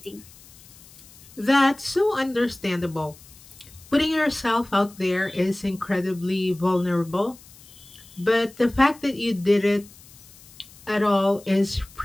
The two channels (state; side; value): noise; left; hiss, 22 dB below the sound